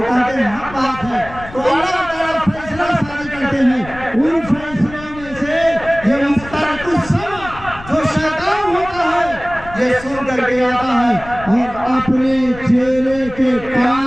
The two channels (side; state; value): left; noise; rumble, 16 dB below the sound